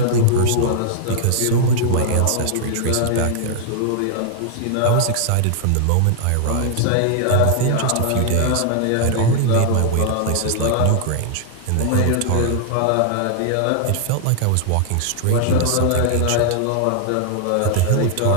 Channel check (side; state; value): both; different; correlation 0.00